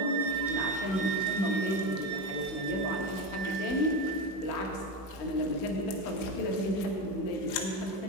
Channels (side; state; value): right; late; 16 ms